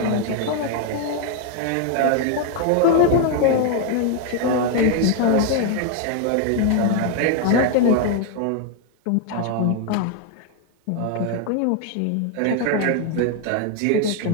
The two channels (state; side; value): different; both; correlation 0.01